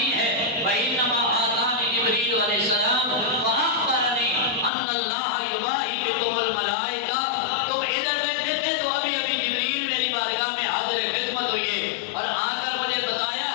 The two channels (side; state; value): right; drops out; at 4.7 s